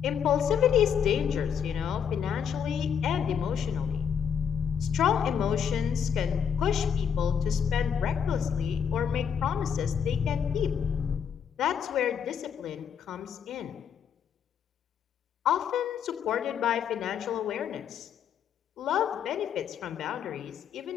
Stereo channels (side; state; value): right; quieter; 7.7 dB